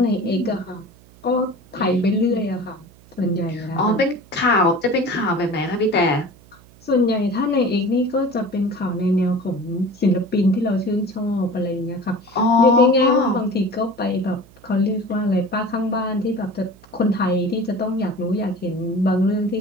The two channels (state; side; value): noise; right; hum, 26 dB below the sound